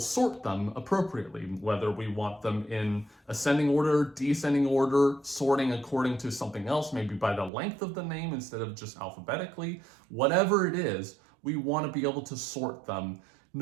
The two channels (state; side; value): drops out; left; at 7.5 s